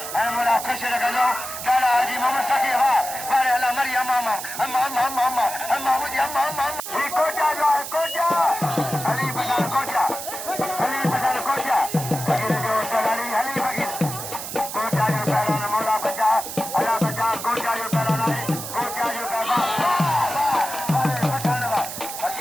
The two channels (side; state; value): right; noise; hiss, 8 dB below the sound